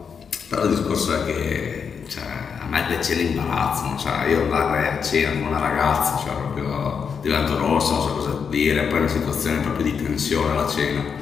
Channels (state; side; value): quieter; right; 6.4 dB